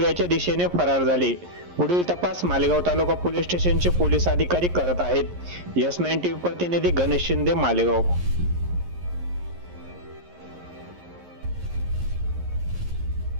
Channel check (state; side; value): late; left; 11 ms